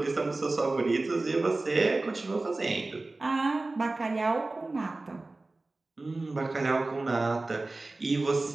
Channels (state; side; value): quieter; left; 3.1 dB